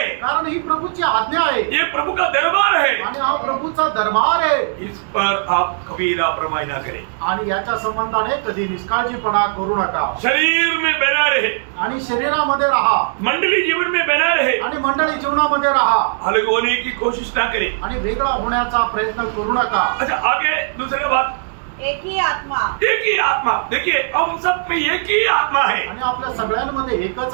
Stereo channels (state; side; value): silent; left; digital silence